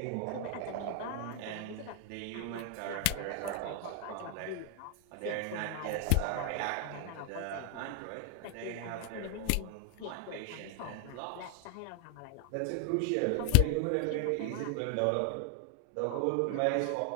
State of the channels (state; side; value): different; both; correlation 0.00